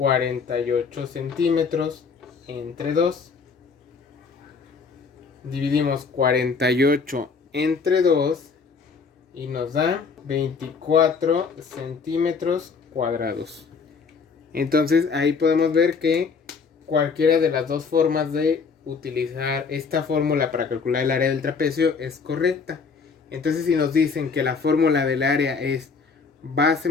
centímetros entre 2. Dividimos 48 entre 2 y nos da 24 centímetros cuadrados. Entonces ahí podemos ver que cualquiera de las dos formas de utilizar esta fórmula para calcular el área del trapecio es correcta. Entonces si nos dicen que la fórmula del área es base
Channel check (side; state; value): right; quieter; 5.2 dB